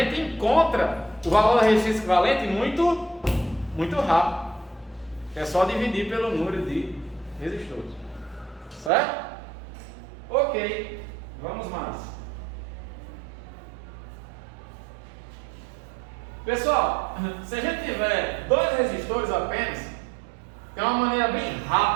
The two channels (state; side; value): drops out; left; at 8.9 s